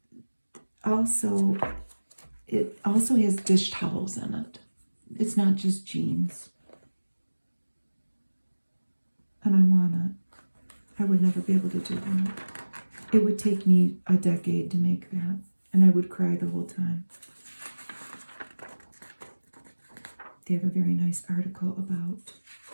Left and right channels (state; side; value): inverted; both; correlation -1.00